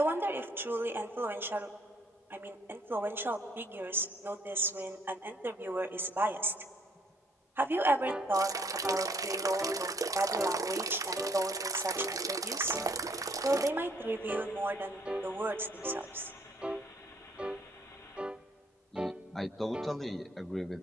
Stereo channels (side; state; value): both; normal; correlation 0.64